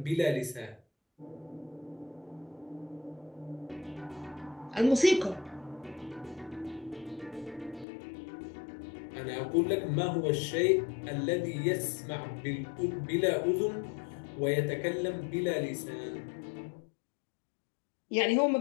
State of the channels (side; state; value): right; drops out; at 7.9 s